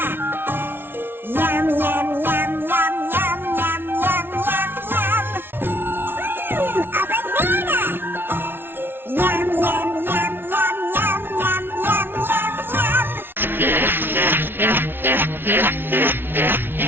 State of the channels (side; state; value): left; late; 0.11 ms